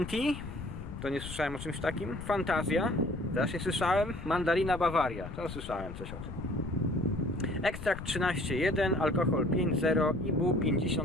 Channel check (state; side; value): noise; left; rumble, 10 dB below the sound